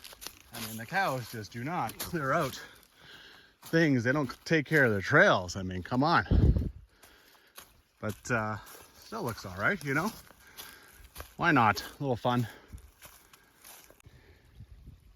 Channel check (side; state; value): both; identical; correlation 1.00